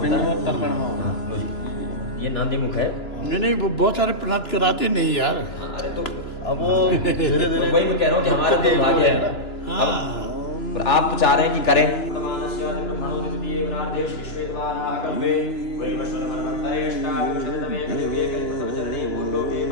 पिंड और तर्पण में होगा। ये नांदी मुख है। नहीं वो बहुत सारे प्रार्थ कराते नहीं यार। अरे तो अब वो धीरे धीरे वही मैं कह रहा हूँ कि हमारा तो भाग्य है। हाँ। और आप तो चाह रहे हैं कि करें।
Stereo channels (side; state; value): right; late; 3.0 ms